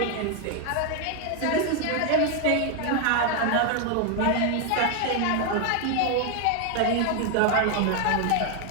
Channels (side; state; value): both; different; correlation 0.01